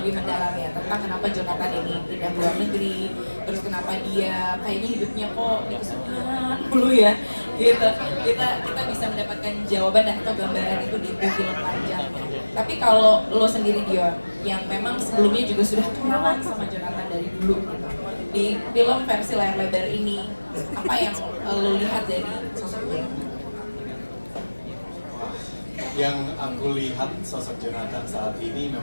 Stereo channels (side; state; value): both; inverted; correlation -1.00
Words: lebih mendalam ya tentang kenapa Jonathan ini pindah ke luar negeri, terus kenapa dia kayaknya hidupnya kok di kesulitan dulu ya, gitu. Kita bisa mendapatkan jawaban dan atau gambaran itu di film panjangnya. Tapi kalau lo sendiri Dion, yang memang sebelumnya juga sudah kenalan sama Jonathan dari dulu gitu, di film versi layar lebar ini, apa yang lo lihat dari sosok dia? Yang aku lihat sosok Jonathan saat ini